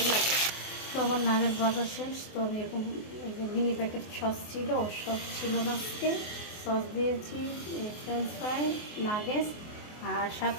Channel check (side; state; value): right; late; 24 ms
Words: লাগে। তো আমার নাগেটস বাজার শেষ। তো আমি এরকম মিনি প্যাকেট সস ছিল, সস ছিল না আজকে। সস দিয়েছি, ফ্রেঞ্চ ফ্রাই, নাগেটস আর